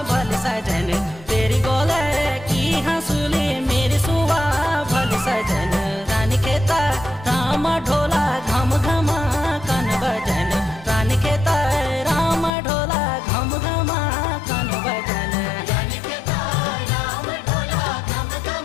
भल सजन तेरी गोले की हंसुली मेरी सुआ भल सजन रानी खेता राम ढोला घम घमा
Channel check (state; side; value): drops out; right; at 12.5 s